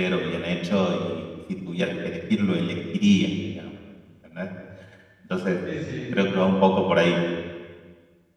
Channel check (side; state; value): both; identical; correlation 1.00